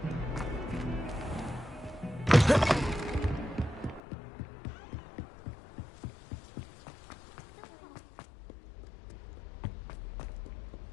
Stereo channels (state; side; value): drops out; right; at 4.0 s